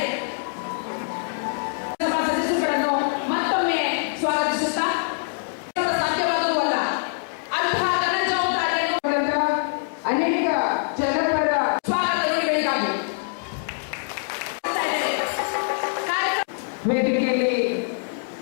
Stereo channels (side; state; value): right; silent; digital silence